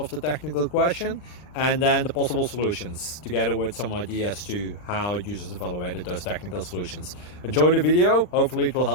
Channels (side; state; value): right; late; 39 ms